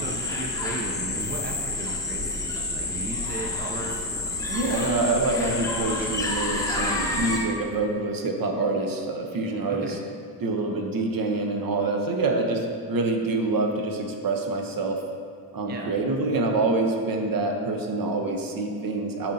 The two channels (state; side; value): normal; both; correlation 0.01